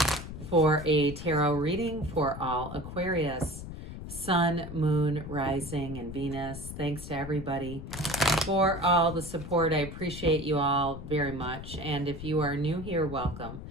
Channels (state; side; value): noise; left; rumble, 10 dB below the sound